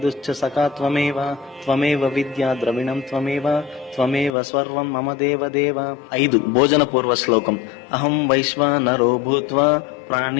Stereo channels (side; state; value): right; drops out; at 4.3 s